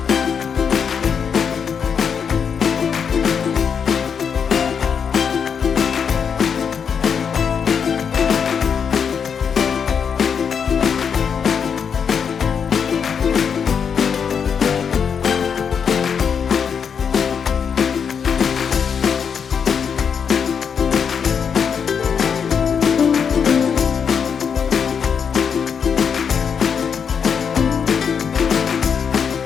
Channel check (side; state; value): right; quieter; 6.9 dB